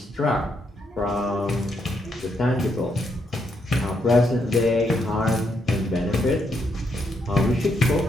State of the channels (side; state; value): both; normal; correlation 0.77